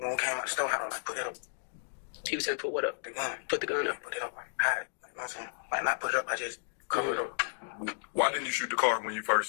we came out the store, I was like, put it up, He was saying, put what up? the gun. Put the gun up. Put it up, like, hide it. Like, you know what I'm saying? Like, not put it up, I just cover it up. Why didn't you shoot the car when you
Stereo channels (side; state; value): right; silent; digital silence